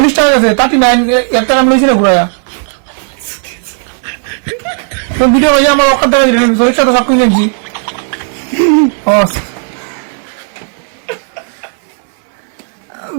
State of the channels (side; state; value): left; silent; 59 dB below the other